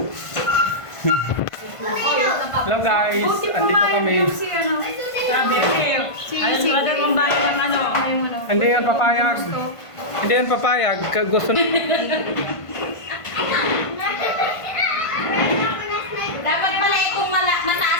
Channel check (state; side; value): late; right; 1.5 ms